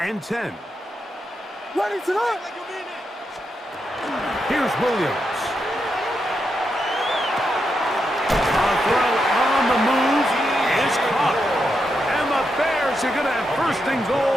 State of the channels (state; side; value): normal; both; correlation 0.84